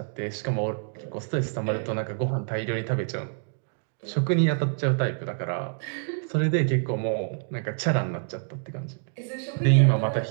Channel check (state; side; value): silent; left; digital silence